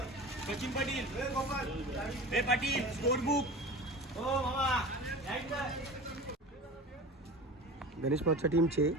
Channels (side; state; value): both; normal; correlation 0.35